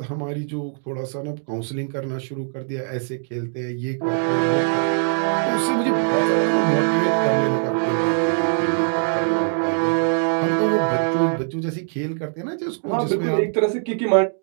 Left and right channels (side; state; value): left; silent; digital silence